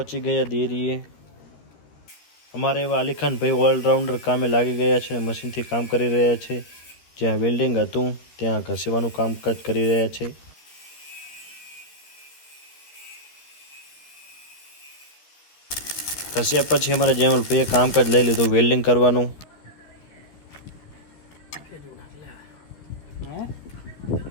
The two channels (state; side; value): late; right; 13 ms